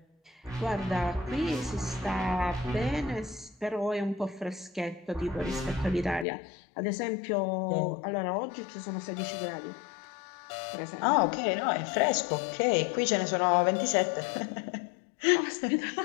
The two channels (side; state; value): right; drops out; at 6.2 s